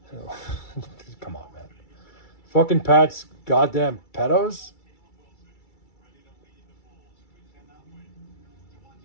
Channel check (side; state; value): right; late; 2.3 ms